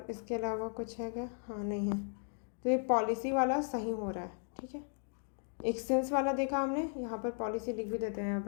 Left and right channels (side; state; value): right; silent; 54 dB below the other